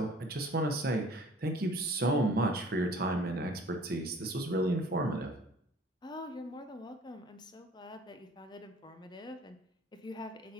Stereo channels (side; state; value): both; normal; correlation 0.51